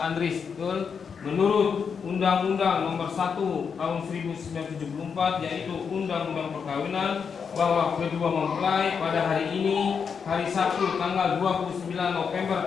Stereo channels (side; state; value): right; quieter; 6.3 dB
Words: Andris, betul? Menurut Undang-Undang Nomor 1 Tahun 1974, yaitu Undang-Undang Perkawinan, bahwa kedua mempelai pada hari ini, hari Sabtu tanggal 29 November